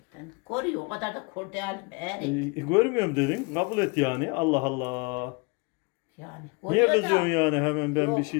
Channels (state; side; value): quieter; right; 30.3 dB